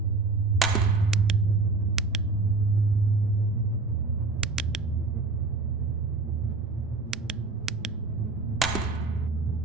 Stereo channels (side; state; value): left; quieter; 3.7 dB